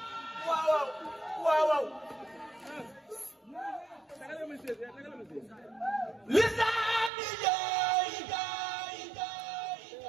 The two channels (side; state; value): left; drops out; at 7.1 s